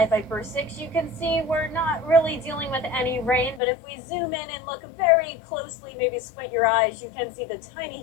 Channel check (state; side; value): drops out; right; at 3.6 s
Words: Viper 6, you can see we're not really dealing with any rain, but if we zoom in and look very closely, maybe squint your eyes, you can see the